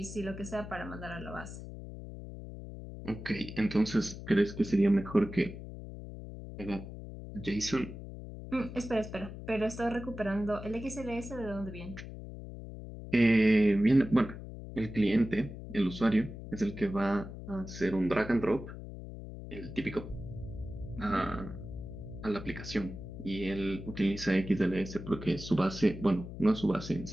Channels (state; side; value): noise; left; hum, 11 dB below the sound